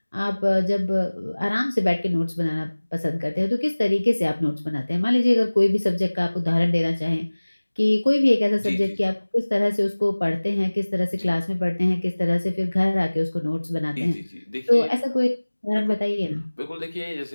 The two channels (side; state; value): both; inverted; correlation -1.00